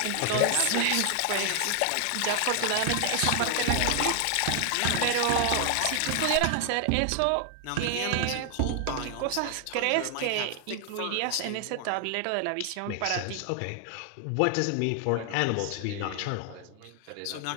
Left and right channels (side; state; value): both; different; correlation 0.00